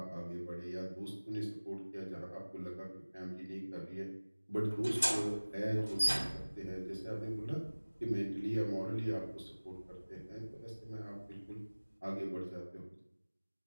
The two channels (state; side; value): inverted; both; correlation -1.00